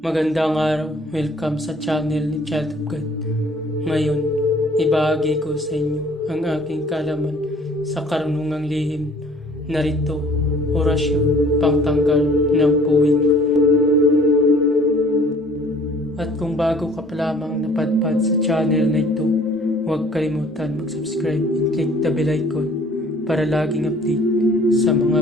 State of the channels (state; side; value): normal; both; correlation 0.54